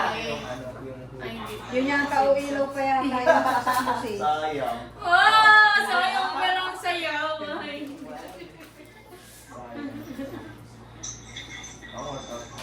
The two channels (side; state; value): both; identical; correlation 1.00